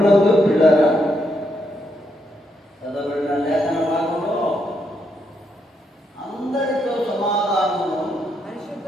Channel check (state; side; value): normal; both; correlation 0.78